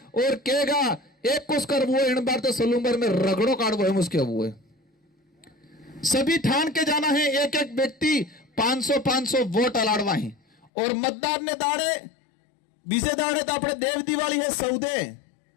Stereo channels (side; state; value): right; drops out; at 10.7 s